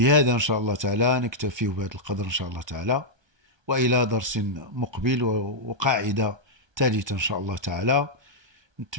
إن شاء الله تعالى نكتفي بهذا القدر إن شاء الله تعالى، وإلى درس مقبل وقاعدة ثالثة إن شاء الله تعالى.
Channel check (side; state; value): left; late; 1.3 ms